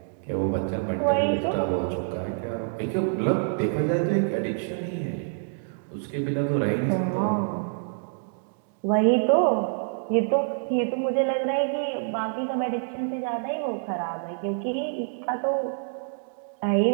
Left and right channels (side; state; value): left; silent; digital silence